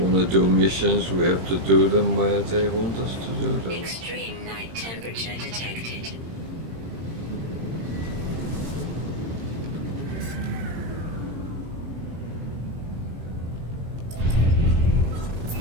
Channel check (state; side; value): late; left; 18 ms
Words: want to do missions, we have to do them where they want us to do them. Extreme night temperature detected.